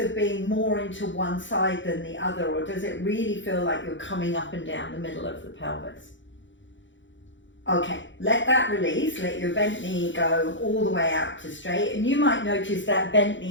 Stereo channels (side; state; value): right; late; 0.54 ms